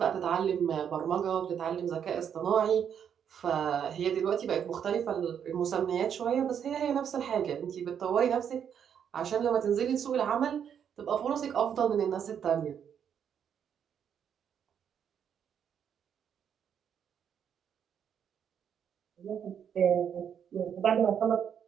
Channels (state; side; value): quieter; left; 8.3 dB